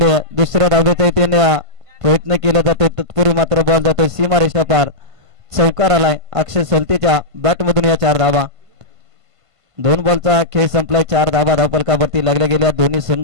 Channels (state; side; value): late; left; 1.5 ms